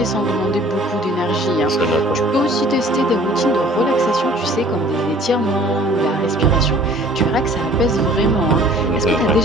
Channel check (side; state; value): both; normal; correlation 0.52